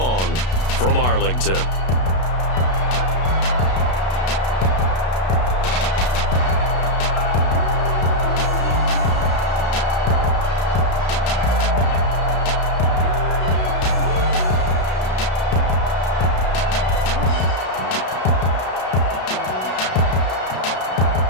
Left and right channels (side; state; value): right; late; 32 ms